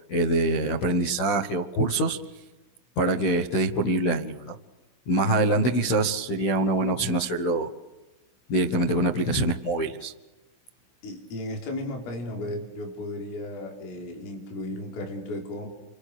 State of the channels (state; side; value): late; right; 16 ms